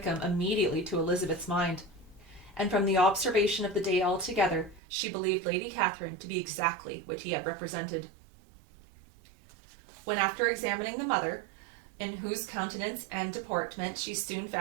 immediately to Elizabeth's mind. and from the observation of the day altogether, she believed Lady Catherine to be exactly what he had represented. When after examining the mother, in whose countenance and deportment she soon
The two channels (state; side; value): drops out; left; at 4.8 s